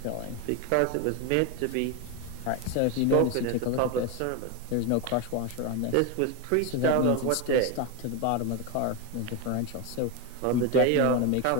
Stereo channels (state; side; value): different; both; correlation 0.02